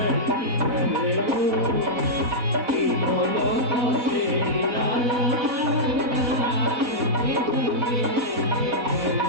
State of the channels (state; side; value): late; left; 4.0 ms